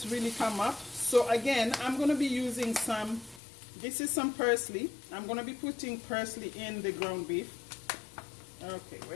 come up. So again, I'm going to be using some, this is some parsley. I'm going to be putting parsley in the ground beef. Okay,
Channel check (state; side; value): drops out; right; at 3.4 s